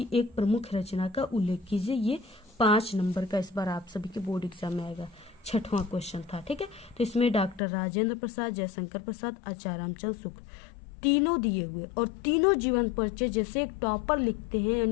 एक प्रमुख रचना का उल्लेख कीजिए। ये 5 नंबर का इस बार आप सभी के बोर्ड एग्जाम में आएगा, 6वां क्वेश्चन था, ठीक है। तो इसमें डॉक्टर राजेंद्र प्रसाद, जयशंकर प्रसाद, आचार्य रामचंद्र शुक्ल, तीनों दिए हुए और तीनों जीवन परिचय, जैसे एक टॉपर लिखते हैं,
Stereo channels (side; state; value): right; drops out; at 7.6 s